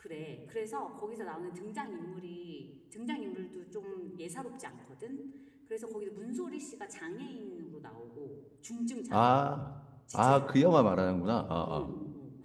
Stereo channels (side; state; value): both; identical; correlation 1.00